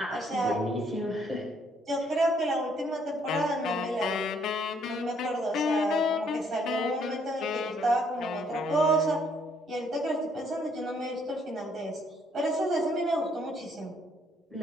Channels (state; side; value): normal; both; correlation 0.67